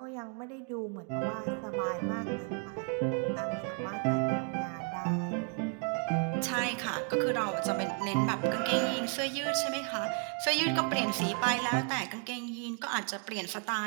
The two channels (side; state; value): left; quieter; 39.8 dB